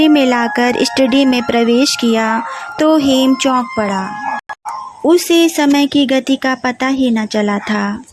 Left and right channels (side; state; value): both; identical; correlation 1.00